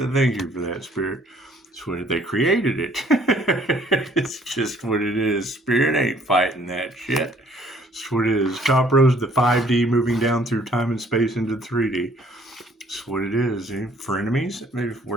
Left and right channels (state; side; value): normal; both; correlation 0.60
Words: you for that, Spirit. It's what they created it. It's just what it is. Spirit ain't fighting that shit. That's what it is. Top rose, the 5D moving down through time and space into 3D. That's what it is. Frenemies? Maybe